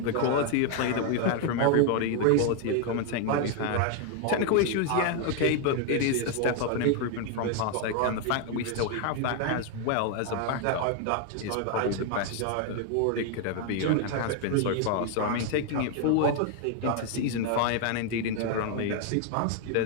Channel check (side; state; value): both; different; correlation 0.00